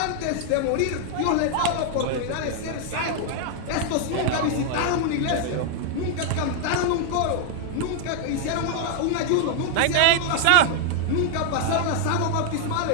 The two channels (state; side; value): different; both; correlation 0.00